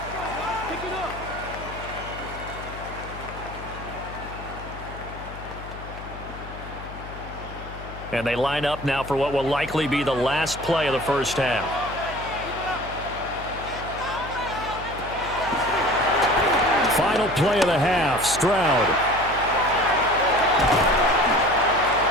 And they line up now for what will likely be the last play of the first half. Final play of the half, Stroud.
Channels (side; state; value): left; noise; hum, 13 dB below the sound